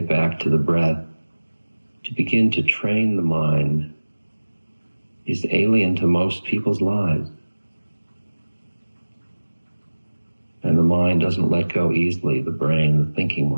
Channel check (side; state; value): both; inverted; correlation -1.00